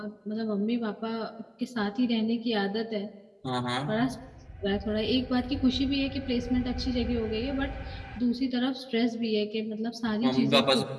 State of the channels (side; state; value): both; identical; correlation 1.00